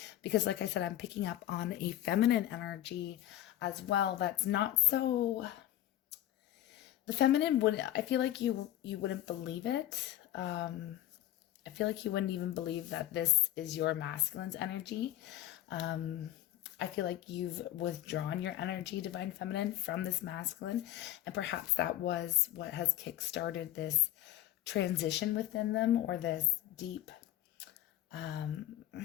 because like I said, I'm picking up on a feminine energy as well. That's not so, the feminine wouldn't, I feel like you wouldn't believe it. I feel like you wouldn't even believe that this is your masculine's energy. I feel like you've withdrawn your energy, Divine Feminine, from this masculine. And perhaps that was what has kickstarted this transition within them, or this deep,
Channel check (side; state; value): right; quieter; 13.5 dB